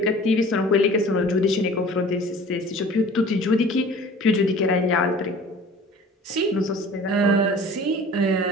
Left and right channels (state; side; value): normal; both; correlation 0.45